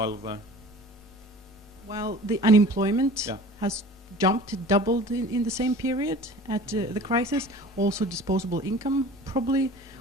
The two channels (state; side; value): normal; both; correlation 0.42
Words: the... Well, the unemployment has jumped, doubled in the same period at the crisis. Also, disposable income probably